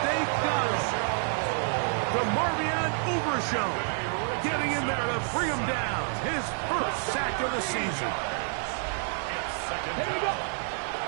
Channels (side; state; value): left; silent; 59 dB below the other